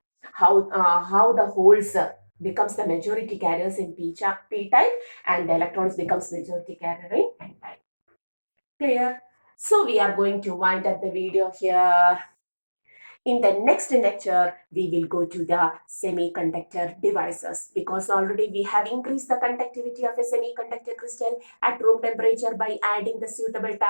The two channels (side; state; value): both; inverted; correlation -1.00